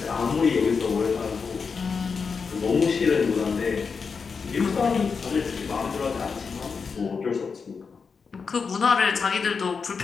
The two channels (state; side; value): quieter; right; 5.4 dB